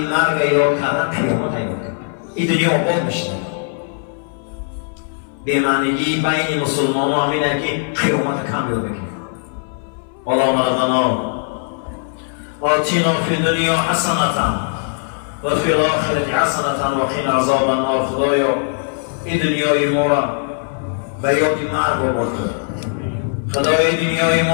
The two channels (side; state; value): right; silent; 61 dB below the other